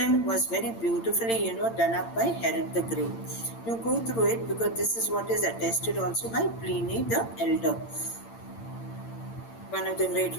was very beautifully, done up by Herod the Great. You go through it because this is what is attested also by Pliny the Elder, one of the great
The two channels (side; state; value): right; late; 8.8 ms